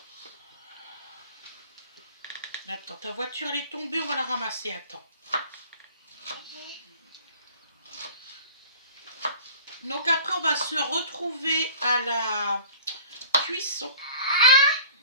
Attends, ta voiture elle est tombée, on va la ramasser. Attends. Donc après on va se retrouver à la cuisson.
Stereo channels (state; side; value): inverted; both; correlation -0.45